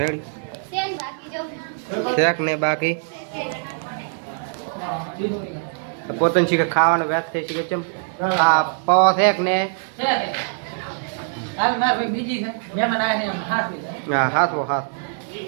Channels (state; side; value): silent; left; 64 dB below the other